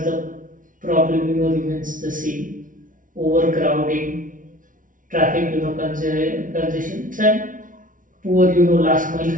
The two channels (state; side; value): late; left; 0.38 ms